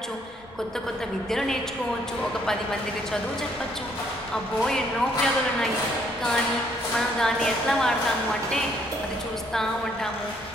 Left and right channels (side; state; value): both; normal; correlation 0.67